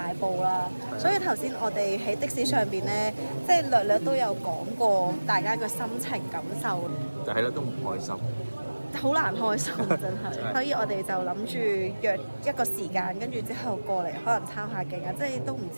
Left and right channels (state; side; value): inverted; both; correlation -1.00